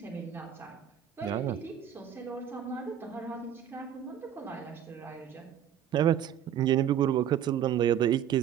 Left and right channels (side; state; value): left; quieter; 9.8 dB